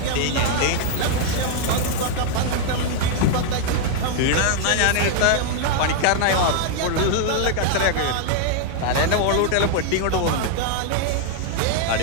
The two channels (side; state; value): both; different; correlation 0.00